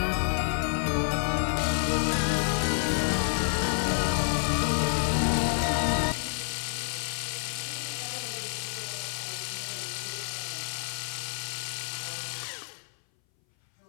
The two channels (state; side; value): silent; right; 59 dB below the other